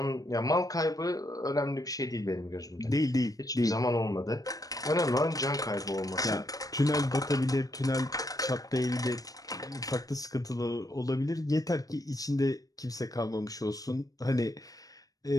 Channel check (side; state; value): right; late; 0.18 ms